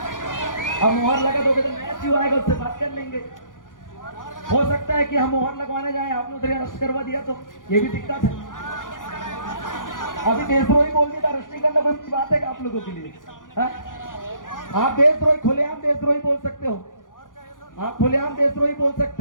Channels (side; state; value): right; late; 0.88 ms